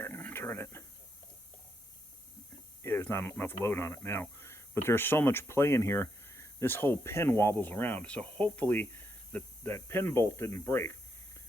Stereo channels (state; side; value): normal; both; correlation 0.79